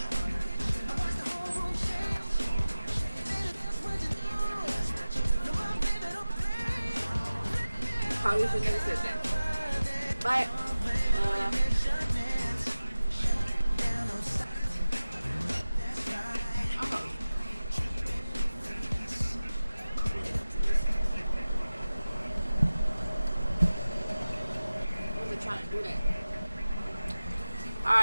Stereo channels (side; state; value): both; inverted; correlation -0.96